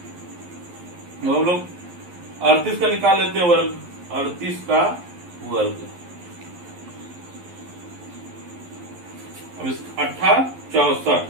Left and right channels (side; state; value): left; late; 11 ms